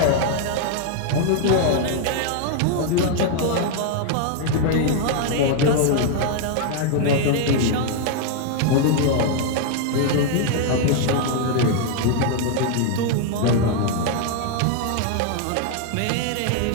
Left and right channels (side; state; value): both; different; correlation 0.00